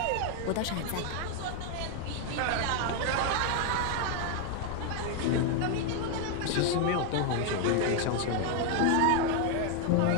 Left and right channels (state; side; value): different; both; correlation 0.00